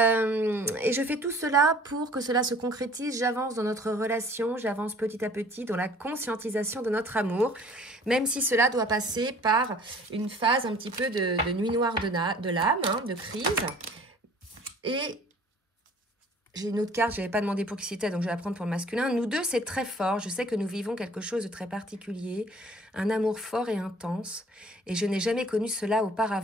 je fais tout cela pour que cela se concrétise. J'avance dans notre relation, j'avance petit à petit dans la conscientisation de notre amour, même si cela doit passer par une phase un petit peu de nuit noire de l'âme, hein, de crise. Et j'ai une autre carte, je n'avais pas demandé pour qui c'était, donc je vais la prendre pour le masculin. Nous deux, c'est très fort. Je sais que nous vivons quelque chose de très particulier, un amour fort et intense, et je n'ai jamais connu cela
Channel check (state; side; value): normal; both; correlation 0.52